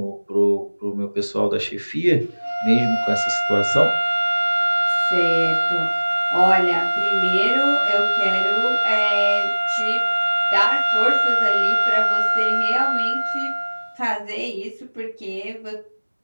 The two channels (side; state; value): both; inverted; correlation -1.00